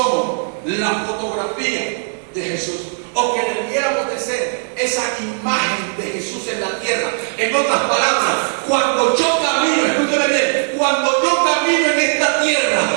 la fotografía de Jesús, o que debiéramos de ser esa imagen de Jesús en la tierra. En otras palabras, cuando yo camino, escúchame bien, cuando yo camino en esta tierra,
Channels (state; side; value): silent; left; 59 dB below the other